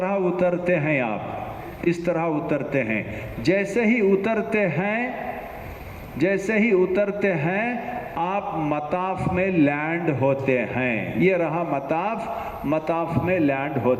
उतरते हैं, आप इस तरह उतरते हैं। जैसे ही उतरते हैं आप मताफ में लैंड होते हैं। ये रहा मताफ में लैंड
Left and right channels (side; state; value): both; identical; correlation 1.00